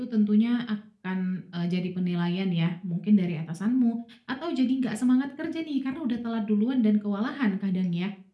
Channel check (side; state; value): both; identical; correlation 1.00